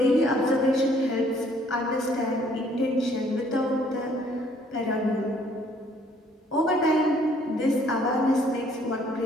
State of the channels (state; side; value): normal; both; correlation 0.62